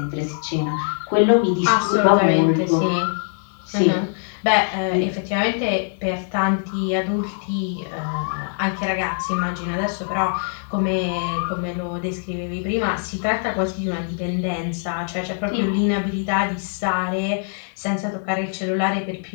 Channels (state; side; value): silent; right; 62 dB below the other